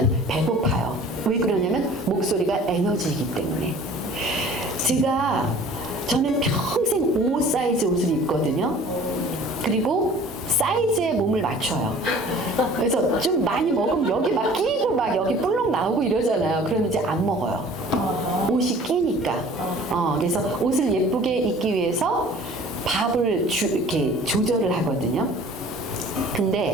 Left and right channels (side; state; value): both; normal; correlation 0.48